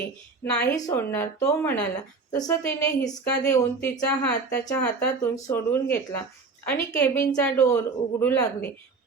नाही सोडणार तो म्हणाला. तसं तिने हिसका देऊन तिचा हात त्याच्या हातातून सोडून घेतला आणि केबिनचा डोअर उघडू लागली.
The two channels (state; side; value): quieter; left; 4.3 dB